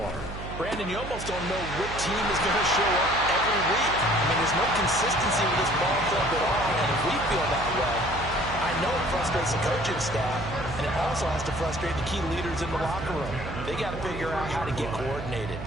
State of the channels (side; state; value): right; noise; hum, 9 dB below the sound